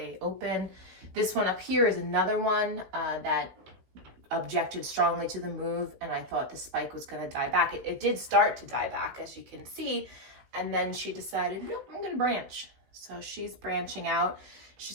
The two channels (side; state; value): left; late; 16 ms